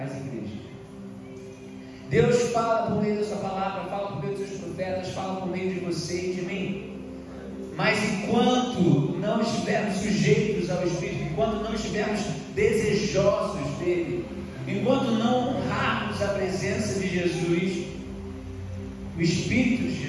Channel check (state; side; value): identical; both; correlation 1.00